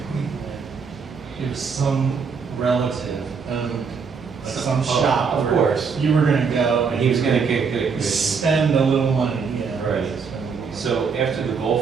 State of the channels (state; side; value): quieter; left; 5.6 dB